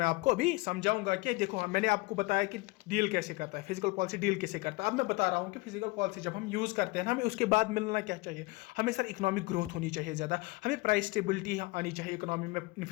आपको अभी समझाऊंगा कि देखो मैंने आपको बताया कि डील कैसे करता है, फिजिकल पॉलिसी डील कैसे करता है। अब मैं बता रहा हूं कि फिजिकल पॉलिसी जब हम यूज करते हैं ना, हमें उसके बाद मिलना क्या चाहिए? हमें सर इकोनॉमिक ग्रोथ होनी चाहिए ज़्यादा, हमें प्राइस स्टेबिलिटी आनी चाहिए, इकोनॉमी में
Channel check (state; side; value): quieter; right; 23.8 dB